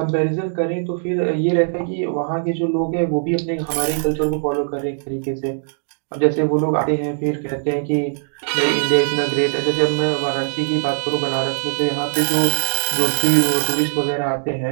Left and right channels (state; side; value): silent; left; digital silence